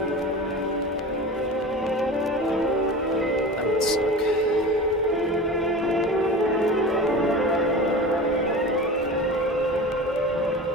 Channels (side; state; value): both; normal; correlation 0.32